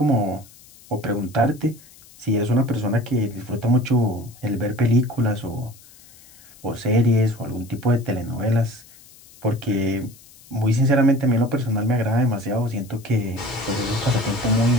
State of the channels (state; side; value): noise; left; hiss, 24 dB below the sound